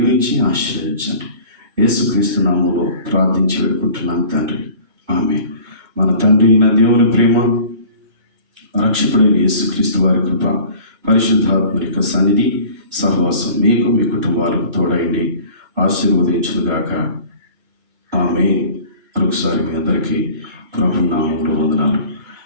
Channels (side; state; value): left; late; 2.2 ms